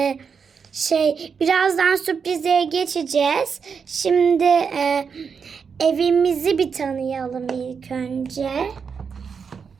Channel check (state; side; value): quieter; left; 6.1 dB